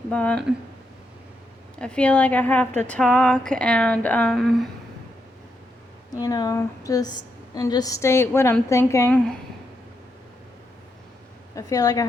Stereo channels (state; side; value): normal; both; correlation 0.81